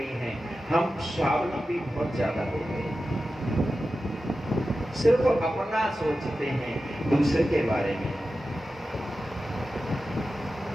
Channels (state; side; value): normal; both; correlation 0.93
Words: हैं, हम स्वावलंबी बहुत ज्यादा हो गए, सिर्फ अपना सोचते हैं, दूसरे के बारे में।